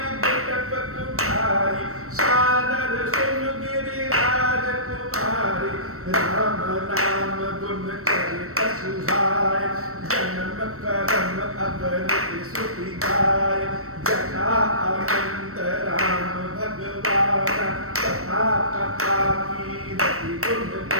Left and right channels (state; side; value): late; left; 0.63 ms